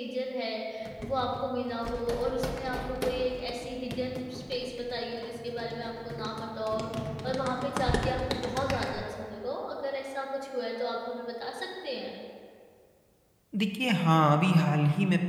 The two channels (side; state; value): both; identical; correlation 1.00